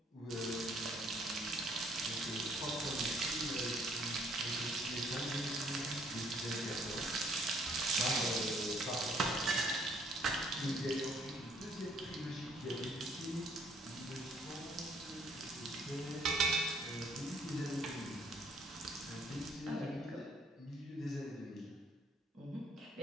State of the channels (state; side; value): normal; both; correlation 0.63